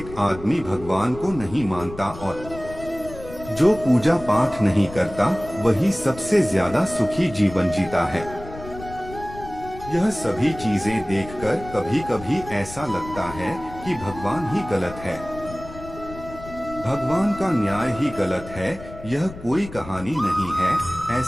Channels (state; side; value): noise; left; rumble, 14 dB below the sound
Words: आदमी भगवान को नहीं मानता और जो पूजा पाठ नहीं करता वही सबसे ज्यादा सुखी जीवन जीता है। यह सभी चीजें देखकर कभी कभी ऐसा लगता है कि भगवान ही गलत है, भगवान का न्याय ही गलत है। यह कोई कहानी नहीं है,